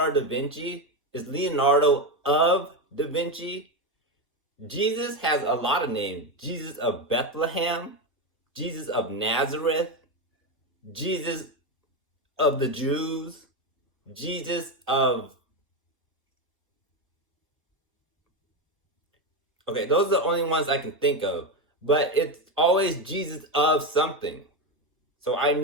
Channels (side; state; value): both; normal; correlation 0.13